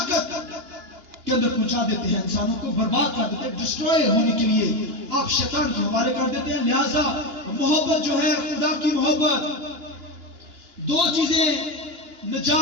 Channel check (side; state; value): left; late; 2.9 ms